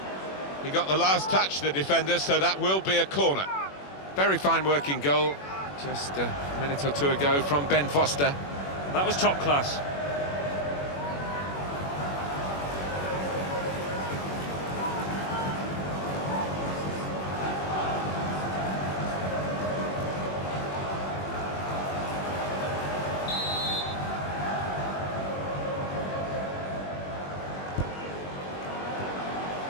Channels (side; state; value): right; late; 21 ms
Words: He got the last touch, the defender, so that will be a corner. Very fine working goal just a minute or two ago from Ben Foster. That was top class.